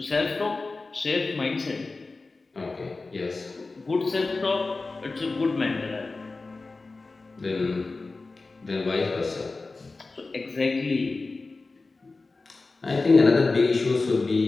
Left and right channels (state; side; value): quieter; right; 3.6 dB